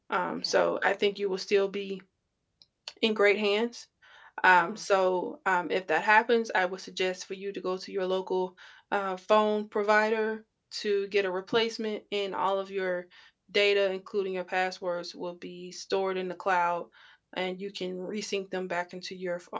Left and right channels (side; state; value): both; identical; correlation 1.00